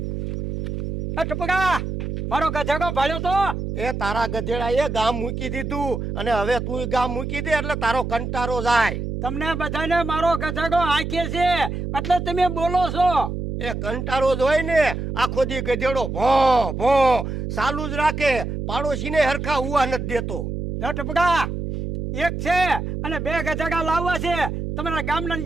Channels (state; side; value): noise; right; hum, 4 dB below the sound